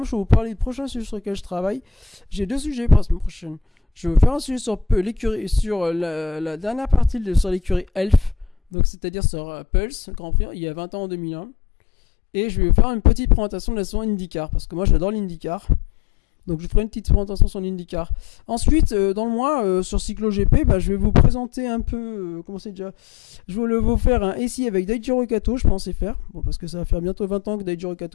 je vais vous parler des prochains sujets sur lesquels je travaille. J'ai 2 sujets pour la semaine prochaine. Je vais vous faire un sujet sur l'écurie, sur la dernière partie sur l'écurie Elf, donc c'est-à-dire sur Pulse, Grand Prix, il y a 20 ans en 2001. Et je vais vous faire une petite présentation de la saison IndyCar, parce que moi j'adore l'IndyCar. Donc je ferai une petite présentation sur l'IndyCar. Ensuite, dans le mois, sur Cyclo GP, je vais vous présenter un peu, je vais vous faire un essai avec Daijiro Kato, je pensais faire. Bon, parce que ça va faire bientôt 20 ans que Daijiro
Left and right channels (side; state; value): right; drops out; at 8.6 s